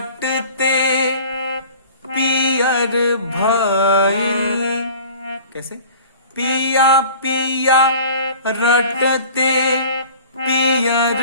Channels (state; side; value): inverted; both; correlation -0.44